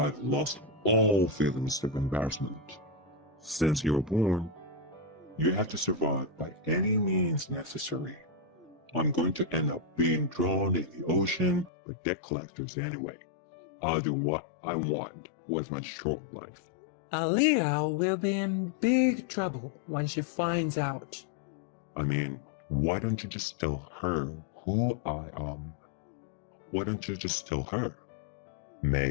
lost all feelings of embarrassment. Since you were born, you have to survive by any means necessary. I'm going to end up being drawn in the ocean by debt collectors anyway. I'll do what I want with my short life. Aaliyah will be in big trouble when she finds out. I mean, why don't you just tell her who I am? Why don't you just tell her?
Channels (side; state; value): right; drops out; at 11.7 s